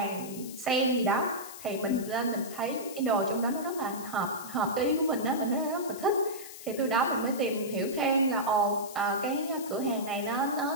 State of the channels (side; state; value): left; noise; hiss, 14 dB below the sound